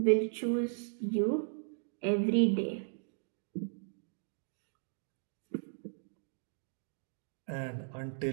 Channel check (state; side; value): silent; left; digital silence